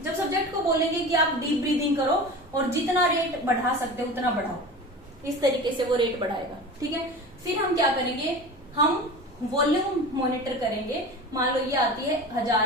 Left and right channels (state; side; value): normal; both; correlation 0.33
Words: जब सब्जेक्ट को बोलेंगे कि आप डीप ब्रीदिंग करो और जितना रेट बढ़ा सकते हो उतना बढ़ाओ, इस तरीके से वो रेट बढ़ाएगा, ठीक है। फिर हम क्या करेंगे, हम वॉल्यूम मॉनिटर करेंगे। मान लो ये आती है 1000